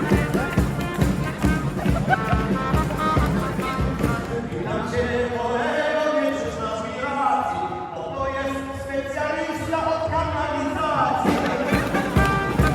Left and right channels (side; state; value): both; identical; correlation 1.00